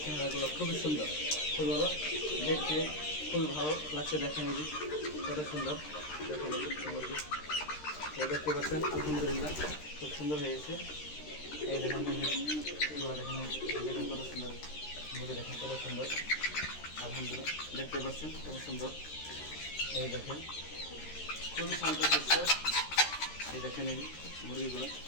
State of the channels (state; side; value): late; right; 13 ms